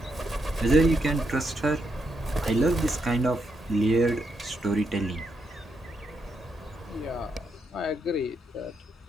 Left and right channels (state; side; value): normal; both; correlation 0.81